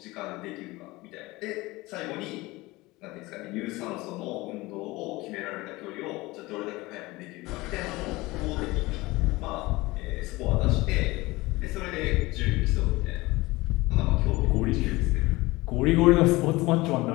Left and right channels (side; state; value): right; quieter; 21.0 dB